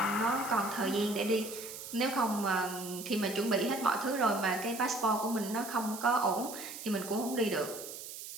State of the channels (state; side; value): noise; right; hiss, 11 dB below the sound